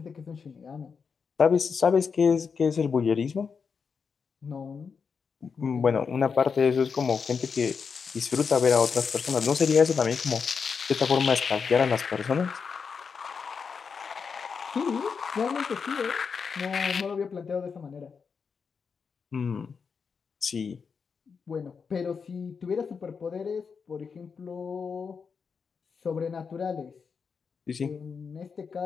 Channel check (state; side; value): quieter; right; 5.8 dB